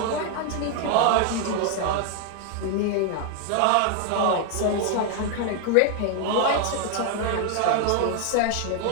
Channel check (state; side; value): different; both; correlation 0.01